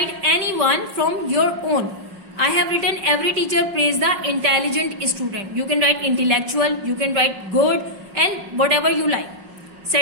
any one from your own. I have written every teacher praise the intelligent student. You can write intellectual, you can write good and whatever you like.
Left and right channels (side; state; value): left; late; 5.1 ms